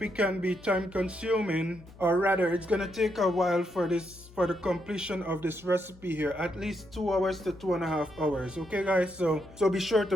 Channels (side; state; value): left; noise; hum, 22 dB below the sound